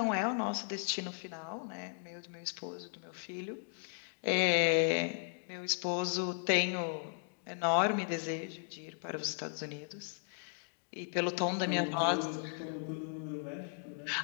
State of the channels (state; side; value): silent; right; digital silence